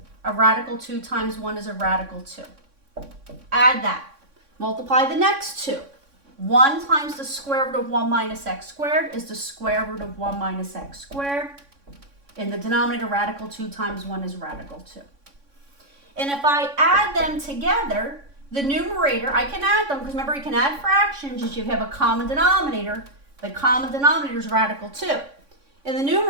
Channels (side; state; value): left; late; 3.6 ms